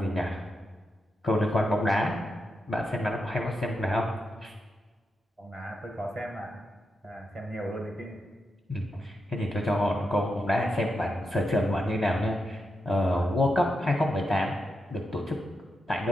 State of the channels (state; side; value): normal; both; correlation 0.86